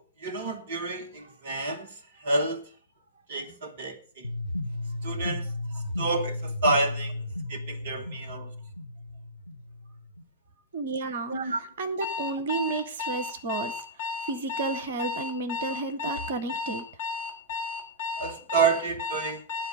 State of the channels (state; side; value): inverted; both; correlation -0.32